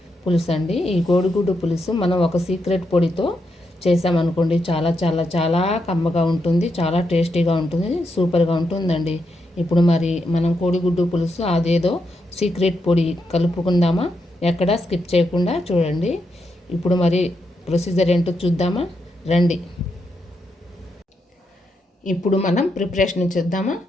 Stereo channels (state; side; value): normal; both; correlation 0.82